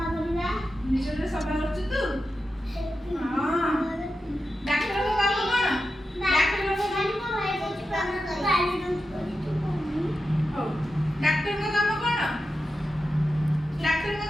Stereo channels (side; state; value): both; normal; correlation 0.90